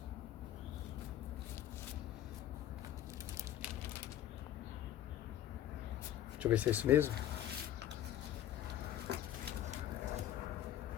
Deixa eu ver se é isso mesmo.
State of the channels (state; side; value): quieter; right; 11.9 dB